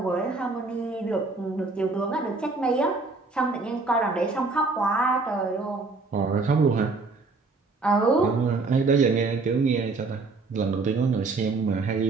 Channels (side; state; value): left; quieter; 3.8 dB